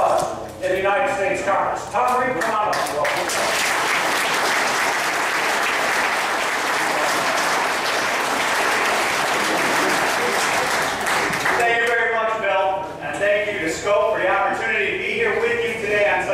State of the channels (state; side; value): identical; both; correlation 1.00